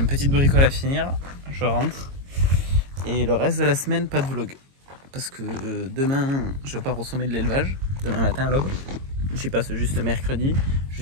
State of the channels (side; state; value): left; late; 22 ms